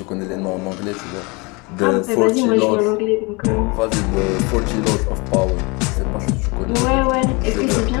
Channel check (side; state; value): right; quieter; 28.0 dB